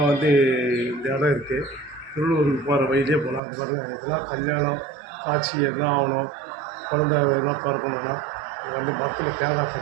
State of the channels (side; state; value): left; drops out; at 3.4 s